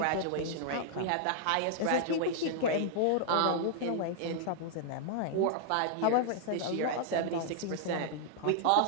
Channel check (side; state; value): both; different; correlation -0.01